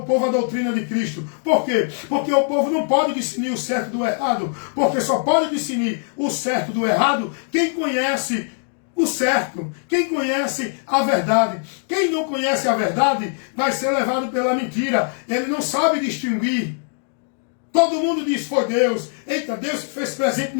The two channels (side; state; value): right; silent; 60 dB below the other